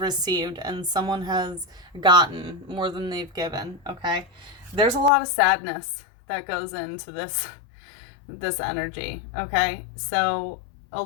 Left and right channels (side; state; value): right; drops out; at 5.1 s